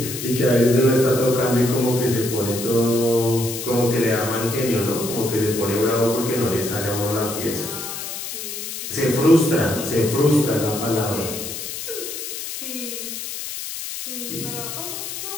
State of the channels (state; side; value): noise; left; hiss, 7 dB below the sound